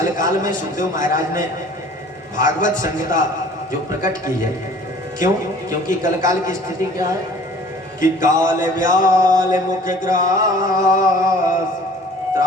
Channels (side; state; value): both; normal; correlation 0.50